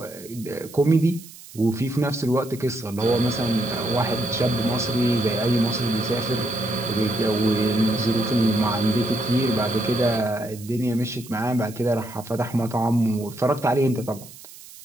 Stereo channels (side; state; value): right; noise; hiss, 18 dB below the sound